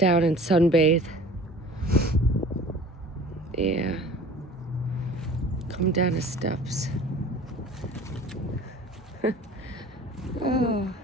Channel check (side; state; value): both; normal; correlation 0.45